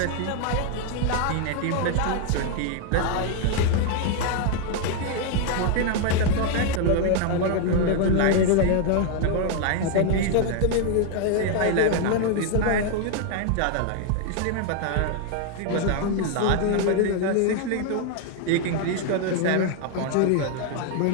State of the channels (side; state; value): both; different; correlation 0.00